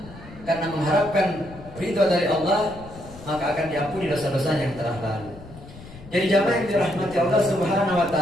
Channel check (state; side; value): noise; left; rumble, 18 dB below the sound